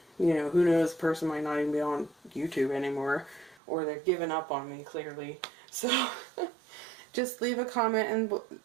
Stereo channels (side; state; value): left; drops out; at 3.6 s